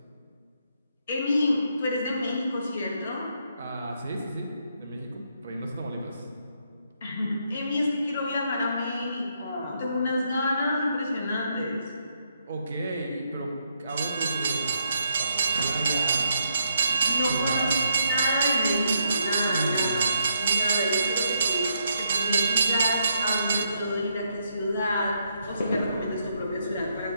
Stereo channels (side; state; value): both; inverted; correlation -0.76